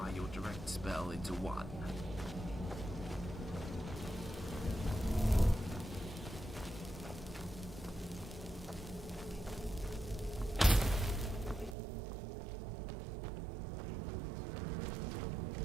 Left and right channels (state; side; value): drops out; left; at 11.8 s